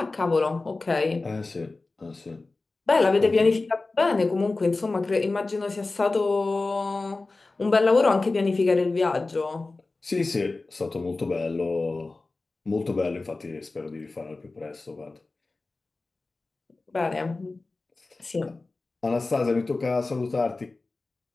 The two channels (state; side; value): quieter; right; 3.4 dB